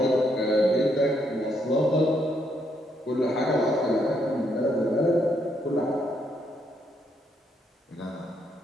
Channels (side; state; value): both; normal; correlation 0.74